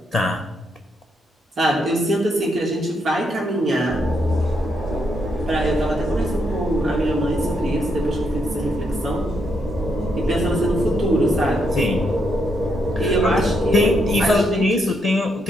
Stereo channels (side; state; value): both; normal; correlation 0.78